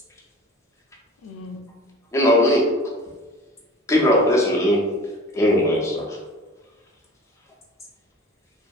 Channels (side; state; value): both; normal; correlation 0.42